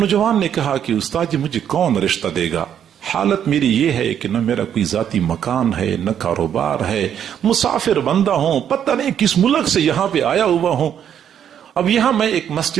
نے کہا کہ استاد جی مجھے کون رشتہ دے گا، حالت میری یہ ہے کہ نہ میرا کوئی ذاتی مکان ہے نہ کاروبار ہے، مسافر بندہ ہوں، پتہ نہیں کس ملک سے یہاں پہ آیا ہوا ہوں۔ اب یہاں میں ایک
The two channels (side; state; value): left; quieter; 9.2 dB